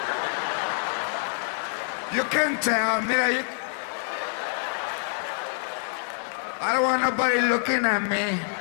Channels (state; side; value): silent; right; 61 dB below the other